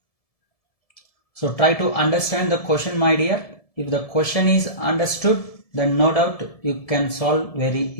So try to understand the question, my dear. If the question is understood, then no doubt you can solve very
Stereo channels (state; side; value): late; right; 1.7 ms